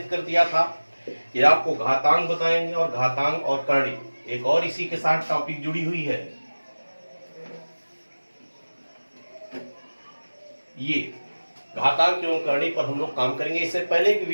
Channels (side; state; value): both; inverted; correlation -1.00